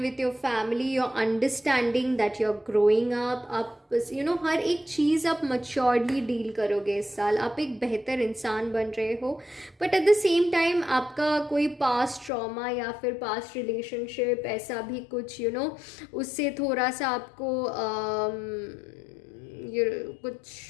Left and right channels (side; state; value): right; drops out; at 12.3 s